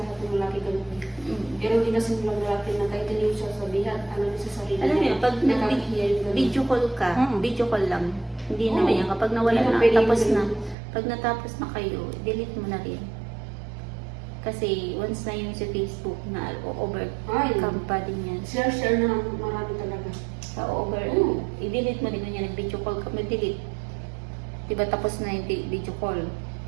ng lalaki ganun. Mm. Pero hindi kasi ng lalaki na kahit hindi mo siya sabihan, alam niya sa sarili Alam niya, mo, pag nakakahiya yung ganun. video call ka, Mm. video call lang. Hindi Oo. naman yan. Kapag nawala Hindi na, na pwede tapos yung na. ganun. Pag natapos na kayo, delete mo na rin. Kasi once na yun sa Facebook na overcome pa din yan. Share na ng marami talaga. Sa Oo. i-delete mo din kung yan, nag-video call ka, delete. Diba tapos na yung video call?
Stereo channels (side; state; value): left; drops out; at 10.8 s